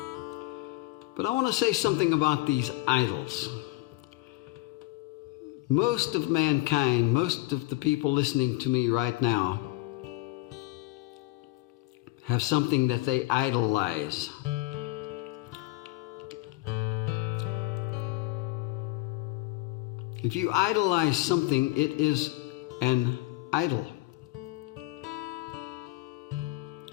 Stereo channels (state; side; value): quieter; right; 19.5 dB